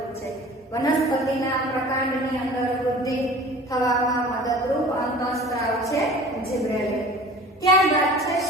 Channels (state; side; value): normal; both; correlation 0.43